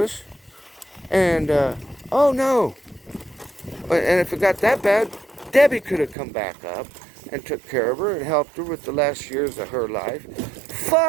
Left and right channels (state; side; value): drops out; left; at 6.2 s